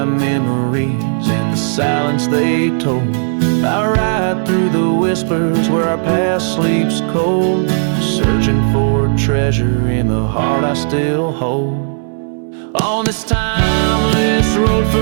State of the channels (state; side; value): silent; left; digital silence